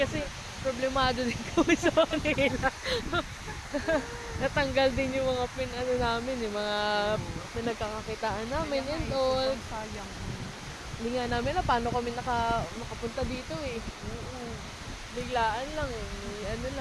problemado din kami sa kanila. Natanggal din yung mga namin, yung mga pinagkakakitaan namin and all. Sayang. Hindi nga namin paano kami nakapunta dito eh. Biglaan lang eh.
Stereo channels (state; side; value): identical; both; correlation 1.00